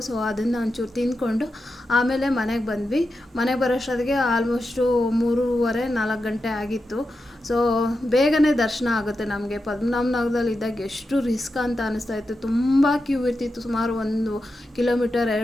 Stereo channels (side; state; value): both; normal; correlation 0.89